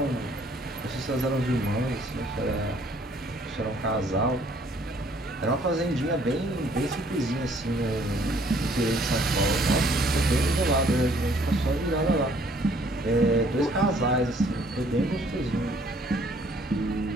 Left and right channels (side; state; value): both; normal; correlation 0.61